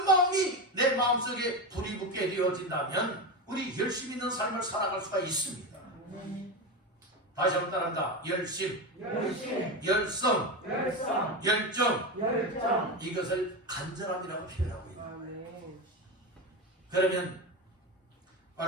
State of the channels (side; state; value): both; normal; correlation 0.17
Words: 마음이 내 마음속에 불이 붙게 되어진다면 우리 열심히 있는 삶을 살아갈 수가 있습니다. 다시 한번 따라한다. 열심, 열성, 열정. 이것을 간절함이라고 표현하고 있는. 그러면